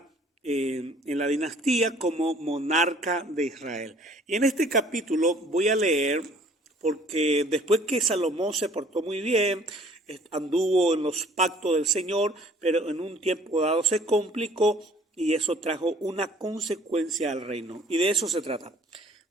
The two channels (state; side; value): normal; both; correlation 0.55